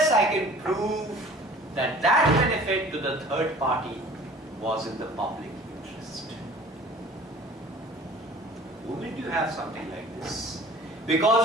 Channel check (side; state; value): both; normal; correlation 0.47